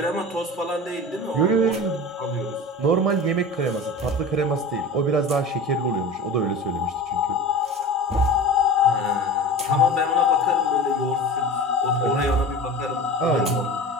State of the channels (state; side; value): normal; both; correlation 0.33